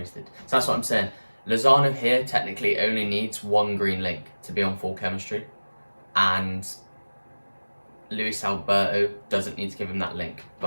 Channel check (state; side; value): inverted; both; correlation -1.00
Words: So that's what I'm saying. Lozano here technically only needs 1 green link to be on full chemistry, and Luis Alberto doesn't need to give him that link.